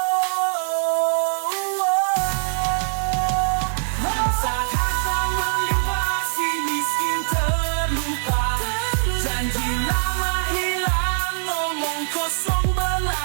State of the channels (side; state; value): left; silent; digital silence